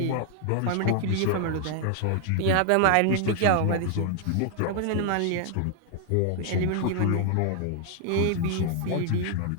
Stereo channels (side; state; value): both; different; correlation 0.00